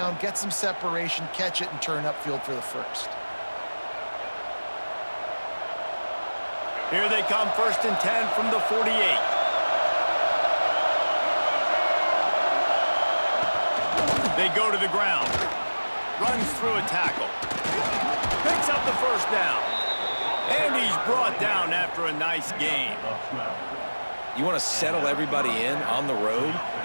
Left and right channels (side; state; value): both; inverted; correlation -1.00